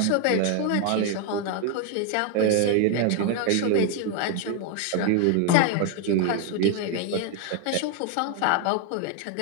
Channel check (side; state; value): both; different; correlation 0.01